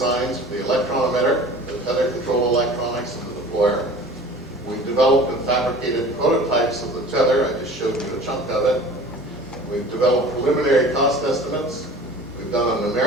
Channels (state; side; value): normal; both; correlation 0.43